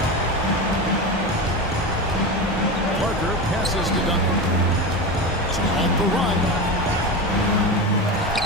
Parker passes to Duncan. So off the run.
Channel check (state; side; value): normal; both; correlation 0.22